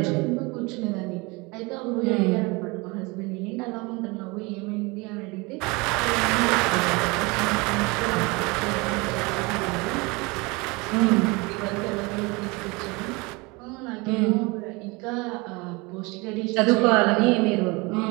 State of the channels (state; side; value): quieter; left; 26.1 dB